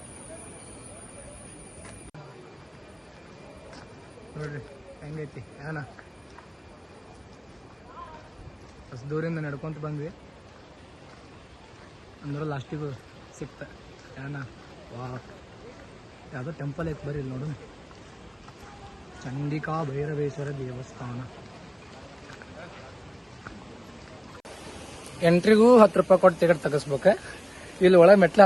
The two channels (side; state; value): both; identical; correlation 1.00